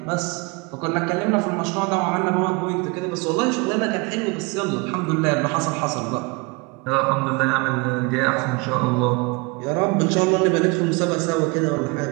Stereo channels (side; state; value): left; quieter; 27.4 dB